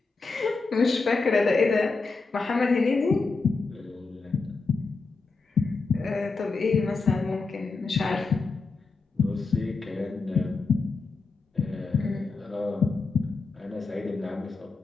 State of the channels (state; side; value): quieter; right; 4.1 dB